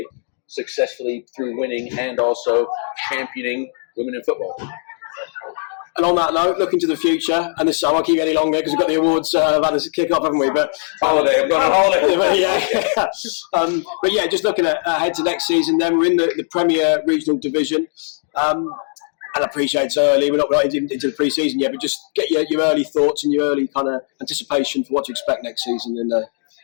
successfully through winning and also championing women in football. And on that note, looking to the future, and this I won't keep you any longer because we've got the awards about to kick off, haven't we? But holiday, I'm going on holiday. But yeah, just looking ahead to next season. Then we're in the Premier Regional Division, and I appreciate it's early. We're not into the pre-season yet, but just get your early thoughts and your early kind of anticipation for what to expect next season in the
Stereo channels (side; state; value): right; silent; digital silence